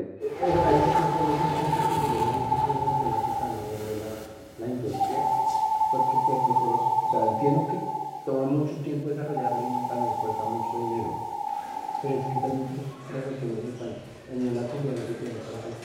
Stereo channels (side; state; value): both; identical; correlation 1.00